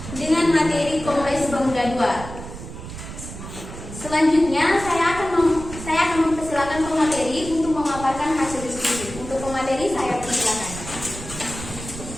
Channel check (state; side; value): noise; right; rumble, 11 dB below the sound